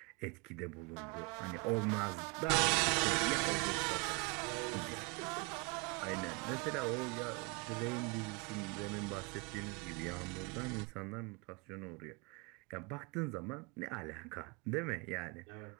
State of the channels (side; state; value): left; quieter; 29.8 dB